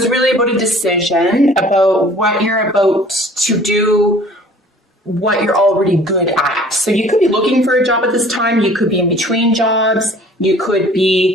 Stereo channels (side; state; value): both; normal; correlation 0.51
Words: really about a decision, about what you're about to do, what you're already good at. So you could be looking for a job at this time. You could be in between jobs. You could